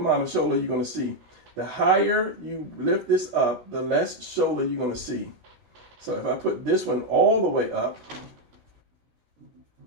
of shoulder you're going to see. The higher you lift this up, the less shoulder you're going to see. So if I put this one all the way up,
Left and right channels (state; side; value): late; left; 17 ms